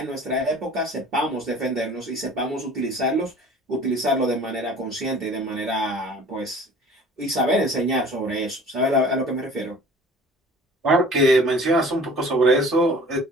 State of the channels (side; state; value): both; normal; correlation 0.46